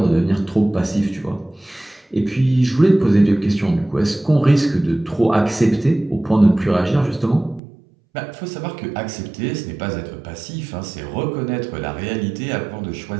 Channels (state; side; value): drops out; left; at 7.6 s